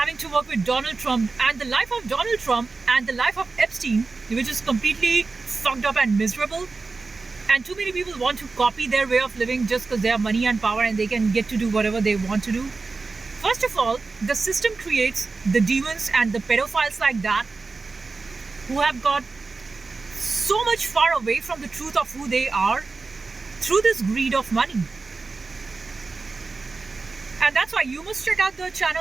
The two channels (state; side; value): quieter; left; 4.0 dB